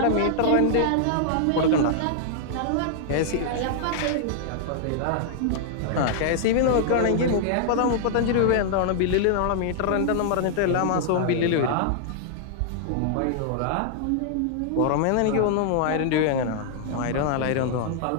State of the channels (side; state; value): both; different; correlation -0.01